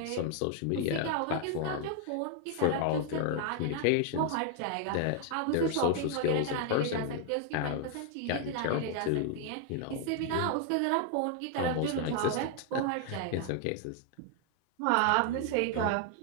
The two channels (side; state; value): both; different; correlation 0.00